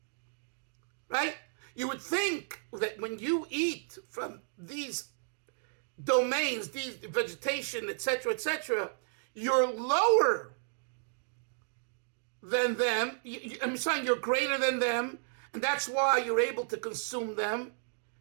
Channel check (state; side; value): silent; left; digital silence